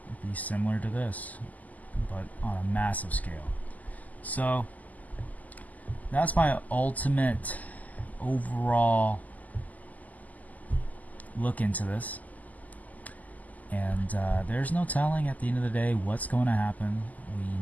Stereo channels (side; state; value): right; late; 0.078 ms